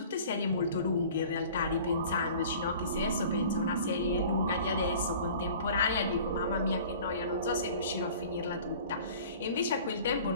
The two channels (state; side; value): inverted; both; correlation -0.46